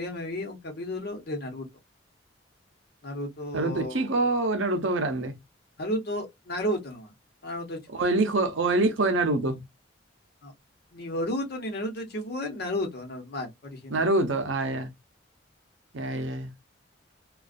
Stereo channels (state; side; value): normal; both; correlation 0.14